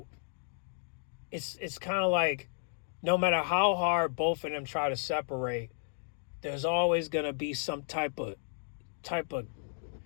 it's kind of like no matter how hard both of them try to separate, there's always gonna be some type of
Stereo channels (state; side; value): silent; right; digital silence